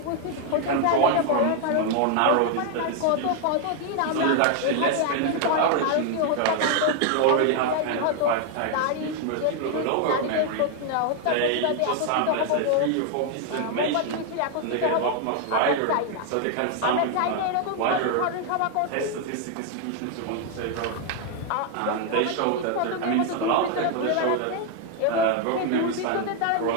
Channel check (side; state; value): both; different; correlation 0.00